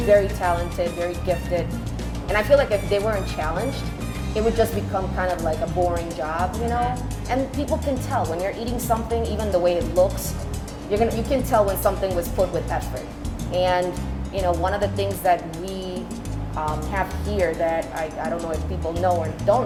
very talented, very gifted. And I feel like if they weren't challenged, it would just become kind of like a boring job, you know? And people can tell when you're eating something, even the way it looks, you can tell when something was put with effort. And, you know, one of the things that we have here that I don't know if people know or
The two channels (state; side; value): identical; both; correlation 1.00